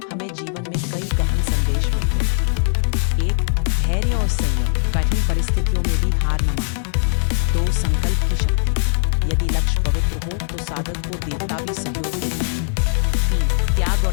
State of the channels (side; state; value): right; silent; digital silence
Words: हमें जीवन में कई गहन संदेश मिलते हैं। 1. धैर्य और संयम। कठिन परिस्थितियों में भी हार न मानना। 2. संकल्प की शक्ति। यदि लक्ष्य पवित्र हो तो साधक को देवता भी सहयोग देते हैं। 3. त्याग